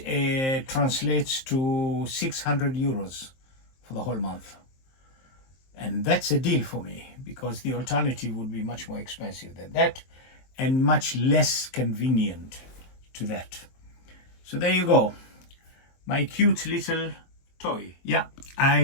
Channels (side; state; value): right; late; 23 ms